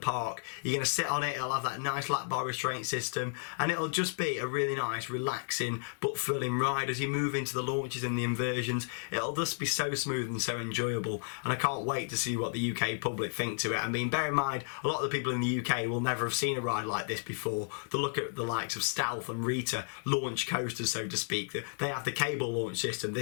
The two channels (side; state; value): right; silent; digital silence